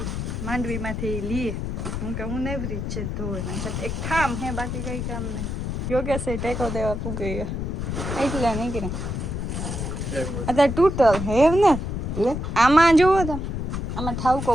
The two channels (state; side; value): noise; left; rumble, 3 dB below the sound